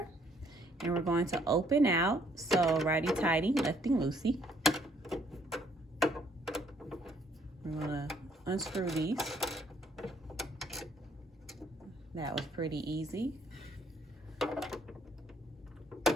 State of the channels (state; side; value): normal; both; correlation 0.66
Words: and we're going to open out. So righty-tighty, lefty-loosey. We're gonna unscrew these. That was pretty easy.